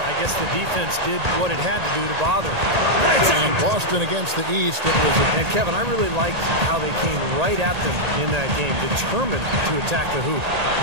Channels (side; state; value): left; late; 1.8 ms